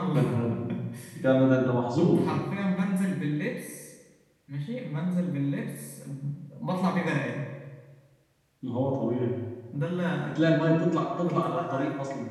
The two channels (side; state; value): both; identical; correlation 1.00